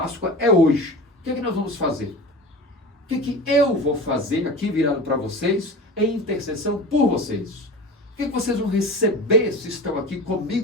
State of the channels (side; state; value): both; normal; correlation 0.33